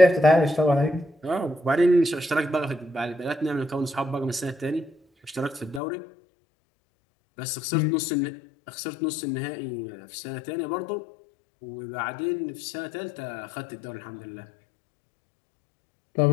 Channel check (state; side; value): drops out; right; at 5.8 s